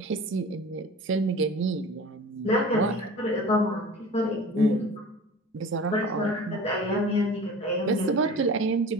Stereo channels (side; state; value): both; normal; correlation 0.39